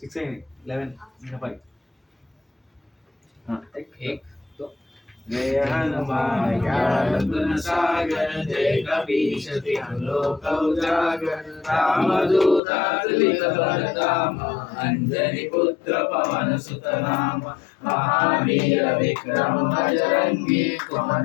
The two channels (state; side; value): drops out; right; at 12.6 s